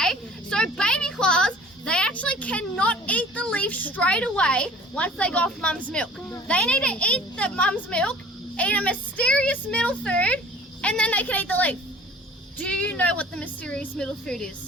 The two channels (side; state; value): both; normal; correlation 0.48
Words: So baby koalas, they actually cannot eat the leaf straight away once they go off mum's milk. They need to eat the mum's milk, eat a mysterious middle food, and then they can eat the leaf. Do you know what the mysterious middle food